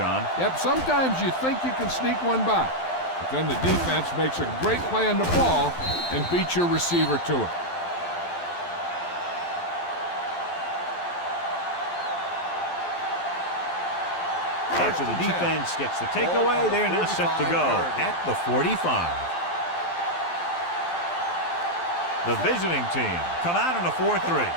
Yep, sometimes you think you can sneak one by, but then the defense makes a great play on the ball and beats your receiver to it. After the defense gets the takeaway, they're now set to go at the 45. The visiting team come out in a 4-3.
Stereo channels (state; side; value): late; right; 12 ms